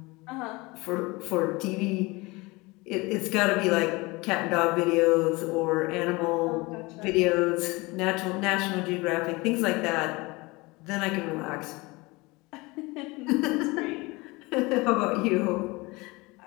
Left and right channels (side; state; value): right; quieter; 23.8 dB